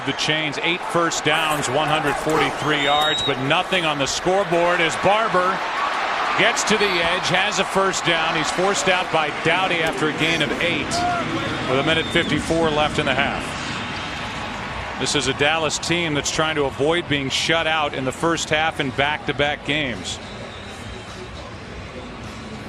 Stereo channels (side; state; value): both; identical; correlation 1.00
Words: the chains. 8 first downs, 143 yards, but nothing on the scoreboard as Barber gets to the edge, has a 1st down. He's forced out by Doughty after a gain of 8 with 1:54 left in the half. This is a Dallas team that's trying to avoid being shut out in the first half in back-to-back games.